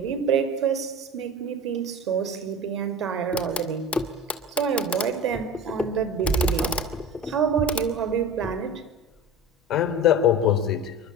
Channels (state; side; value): normal; both; correlation 0.33